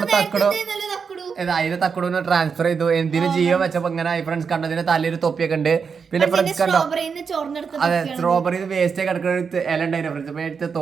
തക്കുട്. അതിന്റെ തക്കുടൂന്ന് ട്രാൻസ്ഫർ ചെയ്തു. എന്തിനു ജീവൻ വെച്ചപ്പോ ഇങ്ങനെ ഫ്രണ്ട്സ് കണ്ടോ. ഇതിന്റെ തലയൊരു തൊപ്പിയൊക്കെ ഉണ്ട്. പിന്നെ ഫ്രണ്ട്സ് കണ്ടോ, അതെ സ്ട്രോബെറി വേസ്റ്റ് കിടക്കുന്ന ഇല ഉണ്ടായിരുന്നു ഫ്രണ്ട്സ്. അപ്പൊ എടുത്ത്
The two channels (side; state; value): left; quieter; 5.9 dB